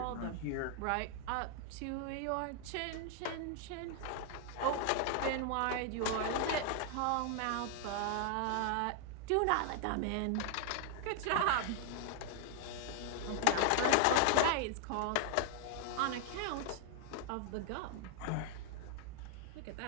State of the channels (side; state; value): both; different; correlation 0.00